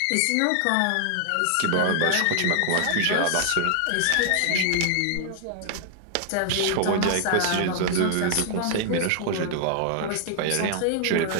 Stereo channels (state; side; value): different; both; correlation 0.00